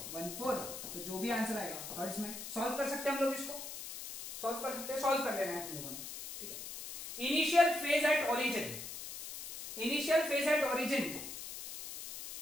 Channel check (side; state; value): left; noise; hiss, 9 dB below the sound